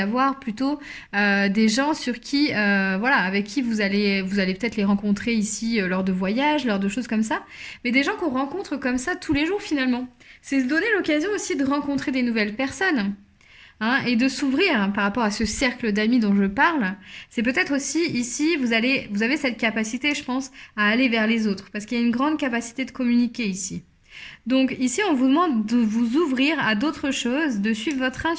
plutôt des gens sur qui, avec qui vous allez peut-être les rencontrer ici lors de voyages, lors de choses comme ça. Mais des gens qu'on rencontre comme ça tous les jours finalement. C'est se donner l'occasion aussi de rencontrer des nouvelles personnes. Hein, et de s'ouvrir par rapport à ce cercle d'amis dont je parle, c'est peut-être aussi ici, vous avez cette capacité, je pense, à aller vers les autres, parce qu'il y a une grande capacité de communiquer ici. Donc ici, on vous demande de vous ouvrir à d'autres choses, de suivre votre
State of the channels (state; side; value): identical; both; correlation 1.00